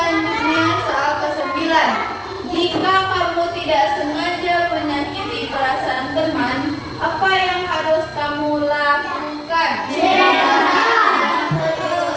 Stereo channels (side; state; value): both; identical; correlation 1.00